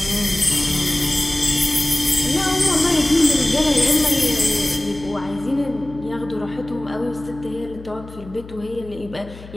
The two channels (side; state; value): left; noise; hum, 17 dB below the sound